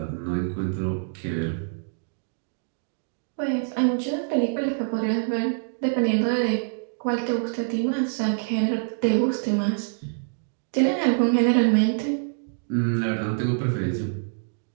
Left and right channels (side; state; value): left; silent; digital silence